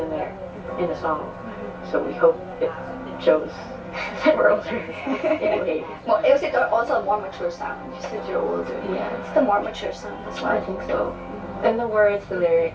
there in the song. So we hope it shows that we're older. Anyway. Well, is it also a more mature sound? You said you're older. Yeah. It's the more mature sound as well. I think so. And the words, the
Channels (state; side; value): identical; both; correlation 1.00